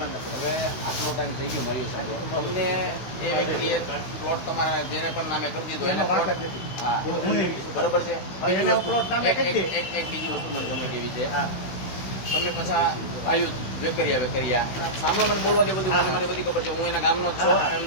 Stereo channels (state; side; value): late; right; 16 ms